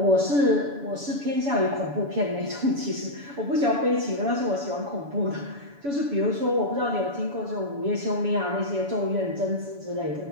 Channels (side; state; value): left; late; 7.0 ms